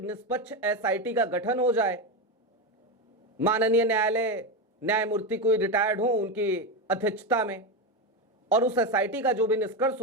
निष्पक्ष SIT का गठन हो जाए। माननीय न्यायालय न्यायमूर्ति कोई रिटायर्ड हो उनकी अध्यक्षता में, और उस SIT का जो भी निष्कर्ष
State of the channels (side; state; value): both; normal; correlation 0.13